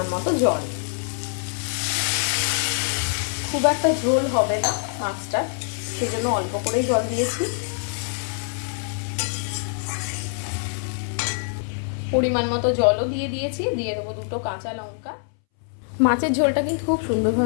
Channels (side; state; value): right; silent; 62 dB below the other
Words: মতো জল। খুব একটা ঝোল হবে না মাছটা, সেজন্য অল্প করেই জল দিয়েছি। পরিমাণ মতো জলও দিয়ে দিয়েছি। দিয়ে দেবো দুটো কাঁচা লঙ্কা। মাছের ঝোলটা কিন্তু খুব